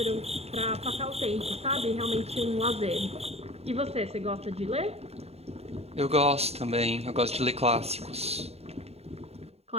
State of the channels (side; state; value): left; late; 0.30 ms